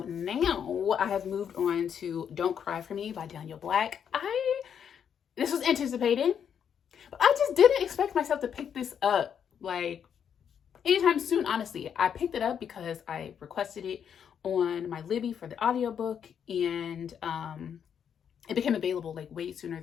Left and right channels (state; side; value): quieter; right; 8.1 dB